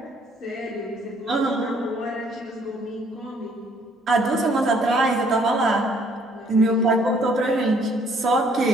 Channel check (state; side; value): normal; both; correlation 0.63